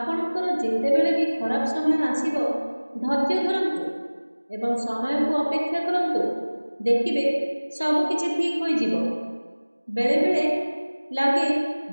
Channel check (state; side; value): inverted; both; correlation -1.00